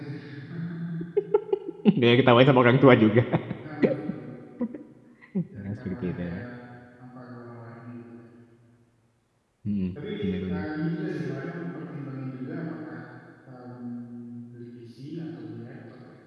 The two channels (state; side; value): identical; both; correlation 1.00